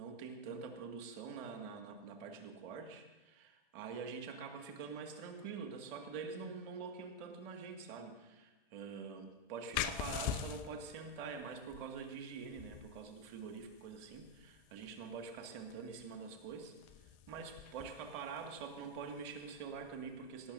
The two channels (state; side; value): late; left; 1.7 ms